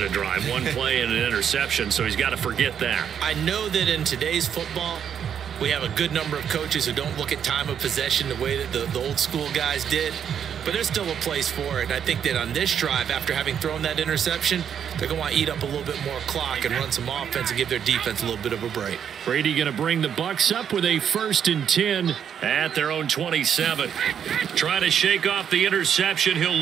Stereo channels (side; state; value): left; quieter; 8.4 dB